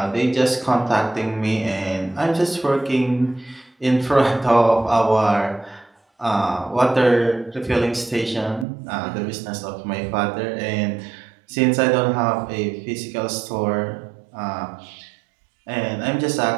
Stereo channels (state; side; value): drops out; left; at 8.7 s